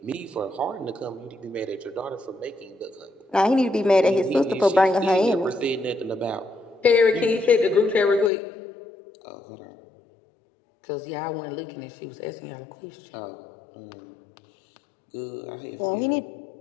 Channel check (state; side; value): drops out; right; at 8.3 s